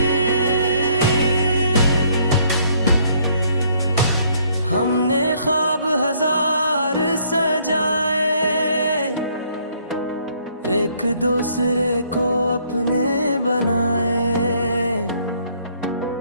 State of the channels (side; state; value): both; inverted; correlation -0.65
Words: हमने ख्वाब हजार सजाए, एक दूसरे को अपने बनाए।